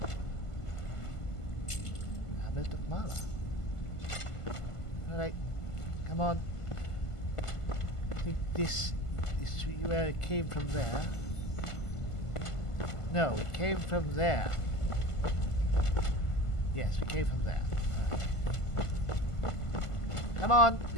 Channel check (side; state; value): right; late; 1.5 ms